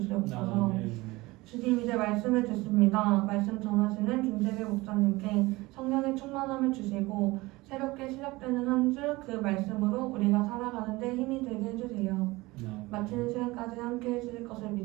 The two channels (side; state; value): left; quieter; 21.2 dB